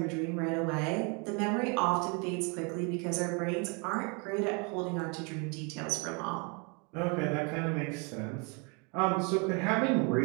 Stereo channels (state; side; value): quieter; left; 33.2 dB